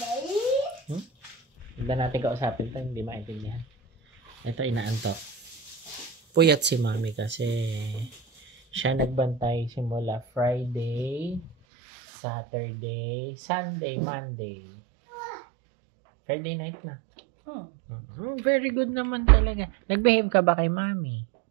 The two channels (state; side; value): drops out; left; at 11.6 s